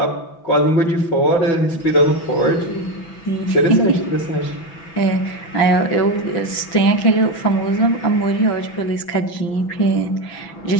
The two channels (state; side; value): late; right; 6.0 ms